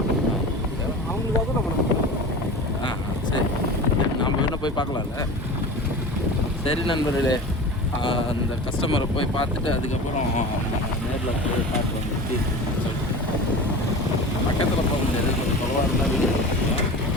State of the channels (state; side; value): normal; both; correlation 0.33